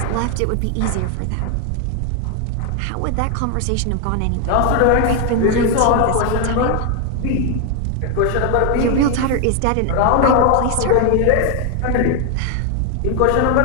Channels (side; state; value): both; different; correlation 0.01